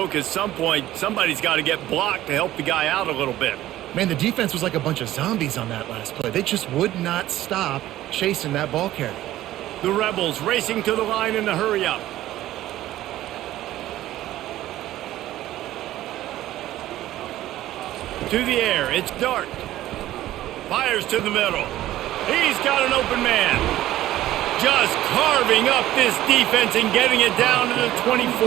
at some point, somebody's got to get blocked to help the guy out a little bit. Man, the defense was like a bunch of zombies on that last play. They just would not stop chasing that ball carrier. The Rebels racing to the line in a hurry up. To the air, it's Dart. Fires to the middle. He's got an open man. Just carving up this defense and getting it down to the 24.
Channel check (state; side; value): quieter; left; 14.4 dB